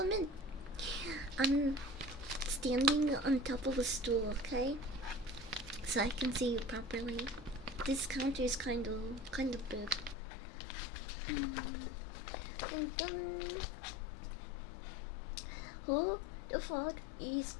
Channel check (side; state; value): right; drops out; at 10.2 s